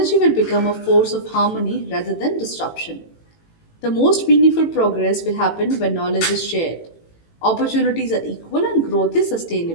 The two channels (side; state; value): right; late; 18 ms